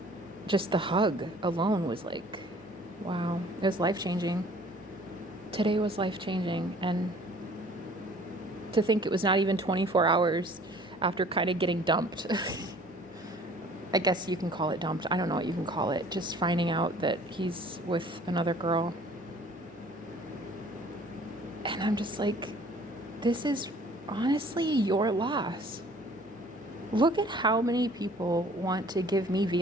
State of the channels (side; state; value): both; normal; correlation 0.53